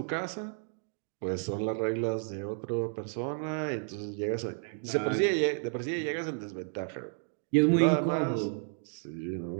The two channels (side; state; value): left; silent; 56 dB below the other